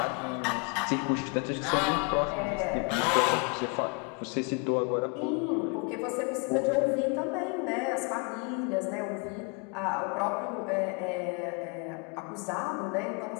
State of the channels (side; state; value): right; quieter; 33.4 dB